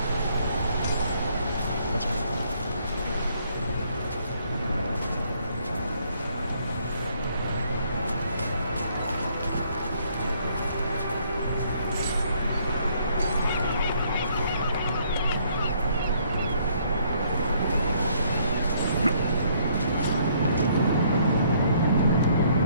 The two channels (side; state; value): both; inverted; correlation -0.66